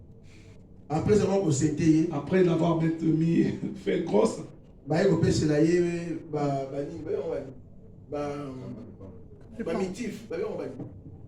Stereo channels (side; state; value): both; identical; correlation 1.00